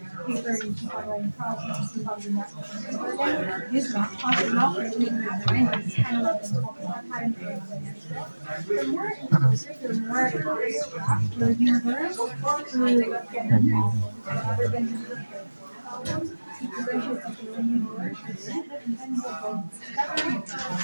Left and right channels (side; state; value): both; inverted; correlation -1.00